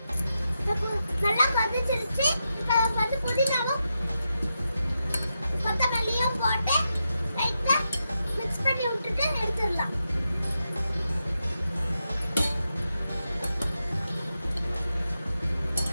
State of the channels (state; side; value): inverted; both; correlation -0.87